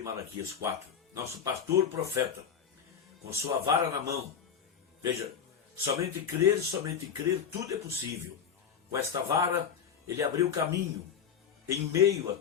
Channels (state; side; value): quieter; right; 7.5 dB